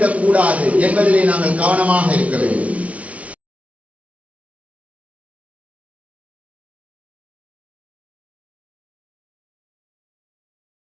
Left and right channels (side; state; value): left; late; 0.066 ms